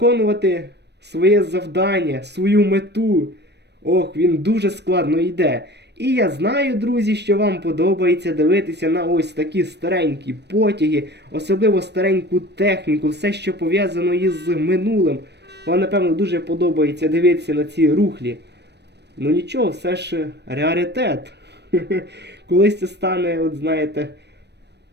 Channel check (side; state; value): left; late; 0.50 ms